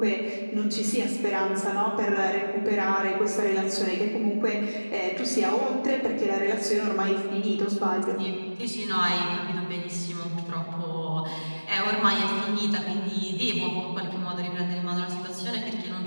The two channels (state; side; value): inverted; both; correlation -1.00